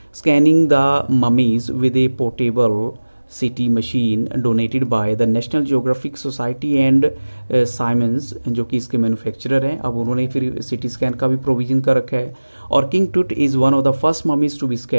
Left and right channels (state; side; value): inverted; both; correlation -1.00